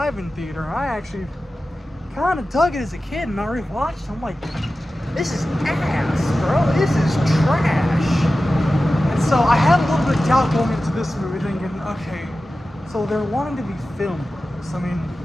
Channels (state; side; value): normal; both; correlation 0.94